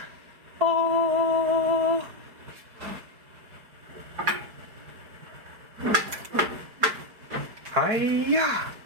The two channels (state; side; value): late; left; 4.8 ms